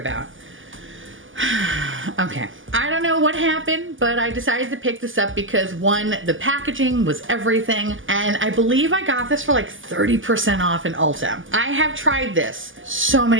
Okay, I don't know what happened, but I decided to pick this up because one, the packaging was everything, and I believe I got this for like 30% off in Ulta. I have tried this so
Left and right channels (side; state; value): left; late; 0.58 ms